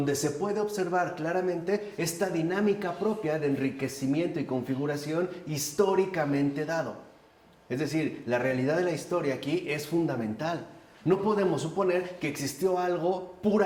se puede observar claramente esta dinámica propia de enriquecimiento y configuración históricamente dado. Es decir, la realidad de la historia aquí es fundamental. No podemos suponer que existió algo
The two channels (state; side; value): identical; both; correlation 1.00